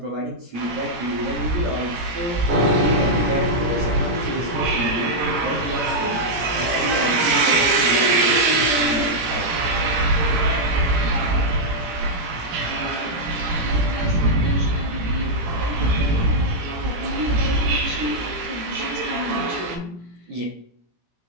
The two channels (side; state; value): left; late; 18 ms